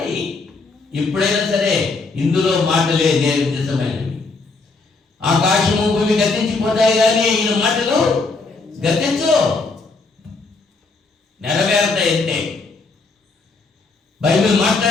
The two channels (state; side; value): quieter; right; 3.9 dB